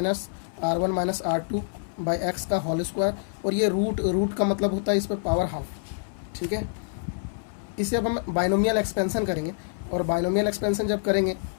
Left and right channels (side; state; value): right; silent; 58 dB below the other